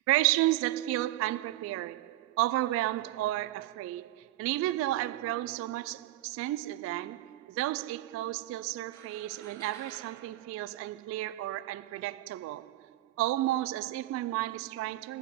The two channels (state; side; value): quieter; left; 15.8 dB